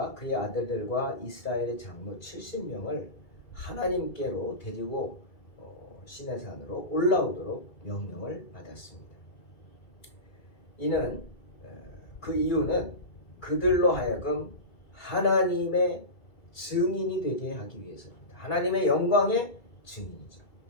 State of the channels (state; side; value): late; right; 2.3 ms